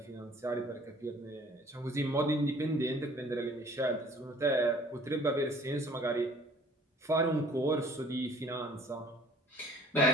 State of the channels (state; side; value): normal; both; correlation 0.53